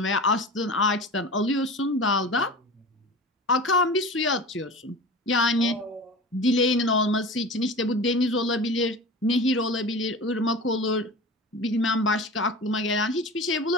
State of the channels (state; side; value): normal; both; correlation 0.33